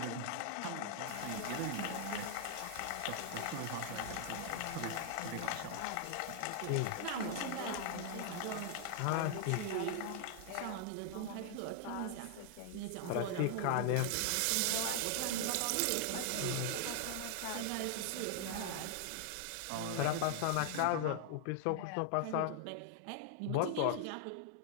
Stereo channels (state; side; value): different; both; correlation 0.00